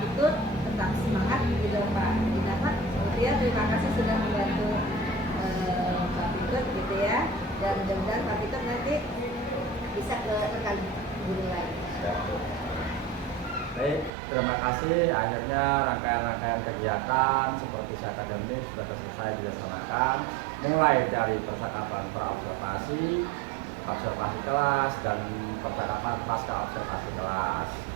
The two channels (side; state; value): left; drops out; at 14.1 s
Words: Pitut, tetap semangat gitu Pak Dinata. Kemudian terima kasih sudah membantu Pak Pitut gitu ya, dan mudah-mudahan Pak Pitut nanti bisa ke rekan guru lain. Baik, terima kasih. Akhirnya rangkaian-rangkaian kegiatan seperti akademik sudah selesai dilaksanakan, mulai dari percakapan praobservasi, observasi kelas, dan percakapan pasca observasi kelas.